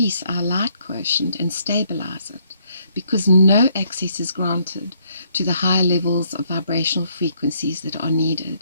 our light quotient and stabilize it, because no access is granted to the higher levels of vibrational frequencies that are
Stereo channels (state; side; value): inverted; both; correlation -0.69